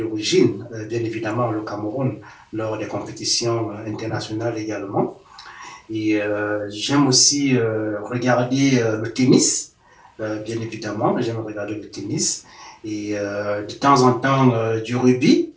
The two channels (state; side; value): identical; both; correlation 1.00